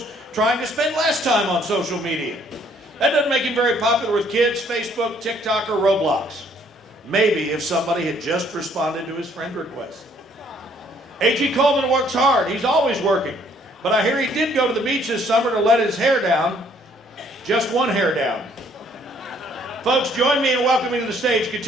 trying to spend less time on social media. That doesn't make him very popular with kids, Facebook, TikTok, or Roblox. Maybe if somebody had just responded to his friend request. A.G. Coleman works hard. He's always working. But I hear he did go to the beach this summer to let his hair down. Just one hair down. Folks, join me in welcoming to the stage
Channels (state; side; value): normal; both; correlation 0.63